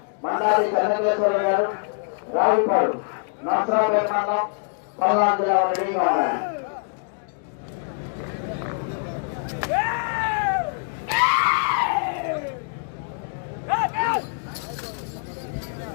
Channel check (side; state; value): right; silent; digital silence